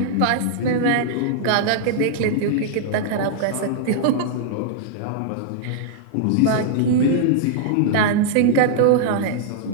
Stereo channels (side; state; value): both; different; correlation -0.01